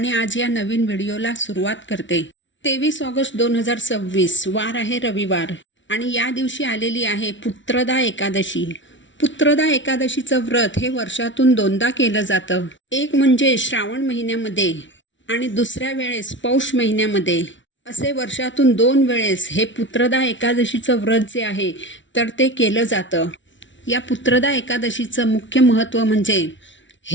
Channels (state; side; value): late; right; 0.55 ms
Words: आज या नवीन व्हिडिओला सुरुवात करते. 23 ऑगस्ट 2026 वार आहे रविवार आणि या दिवशी आलेली आहे पुत्रदा एकादशी. पुत्रदा एकादशीचं व्रत हे वर्षातून दोनदा केलं जातं. एक म्हणजे श्रावण महिन्यामध्ये आणि दुसऱ्या वेळेस पौष महिन्यामध्ये. असे वर्षातून 2 वेळेस हे पुत्रदा एकादशीचं व्रत जे आहे तर ते केलं जातं. या पुत्रदा एकादशीचं मुख्य महत्त्व म्हणजे